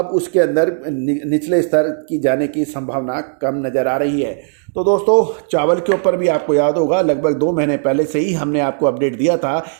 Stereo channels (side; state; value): left; silent; digital silence